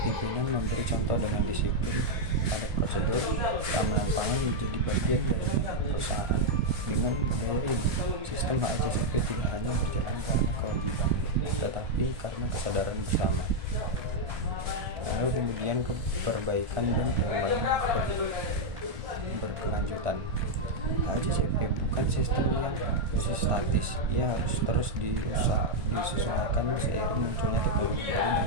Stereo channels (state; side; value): late; left; 1.4 ms